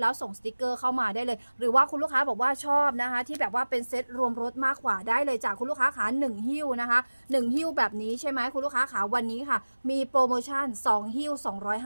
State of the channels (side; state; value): both; inverted; correlation -1.00